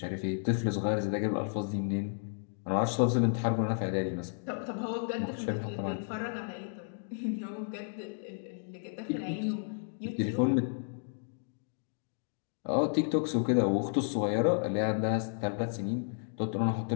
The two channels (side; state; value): right; silent; digital silence